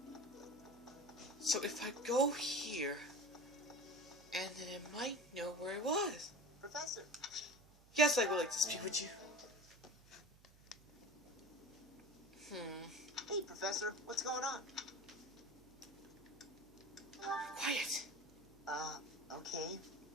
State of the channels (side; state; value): right; noise; hum, 25 dB below the sound